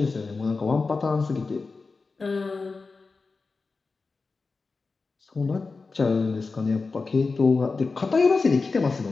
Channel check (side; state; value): right; quieter; 4.2 dB